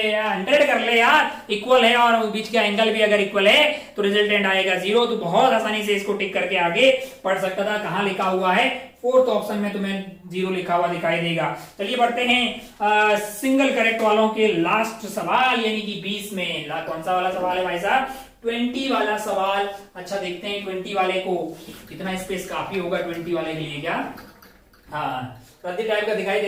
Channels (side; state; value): both; identical; correlation 1.00